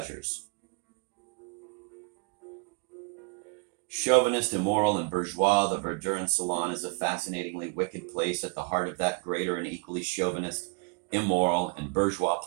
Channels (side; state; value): left; quieter; 34.1 dB